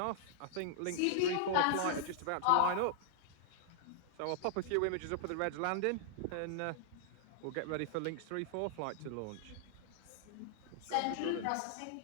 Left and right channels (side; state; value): both; different; correlation -0.01